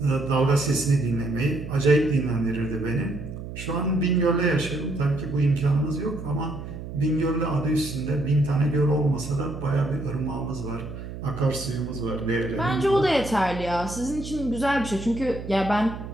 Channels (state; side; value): noise; right; hum, 10 dB below the sound